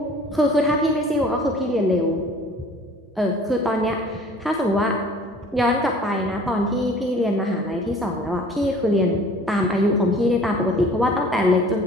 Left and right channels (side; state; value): both; normal; correlation 0.49